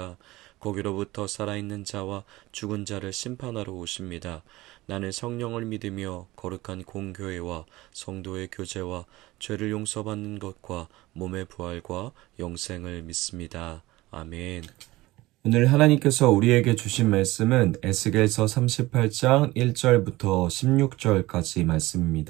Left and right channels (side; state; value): left; quieter; 18.9 dB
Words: 거기로부터 살아있는 자와 죽은 자를 심판하러 오십니다. 나는 성령을 믿으며 거룩한 공교회와 성도의 교제와 죄를 용서받는 것과 몸의 부활과 영생을 믿습니다. 아멘. 오늘 하나님께서 우리에게 주신 말씀은 에스겔서 38장 1절부터 16절까지